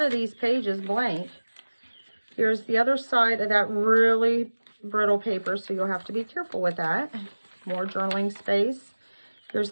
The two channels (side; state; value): both; inverted; correlation -1.00